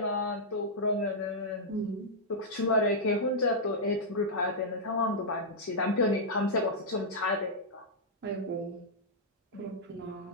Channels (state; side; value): normal; both; correlation -0.08